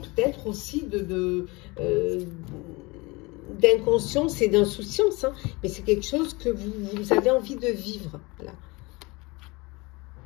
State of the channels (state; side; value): quieter; right; 24.8 dB